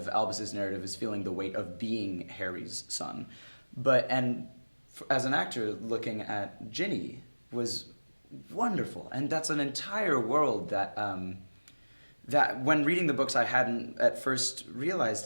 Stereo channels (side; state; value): both; inverted; correlation -1.00